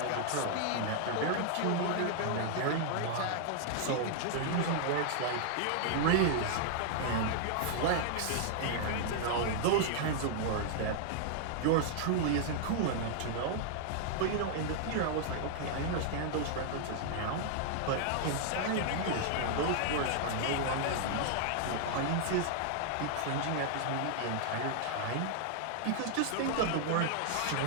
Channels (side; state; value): both; different; correlation -0.01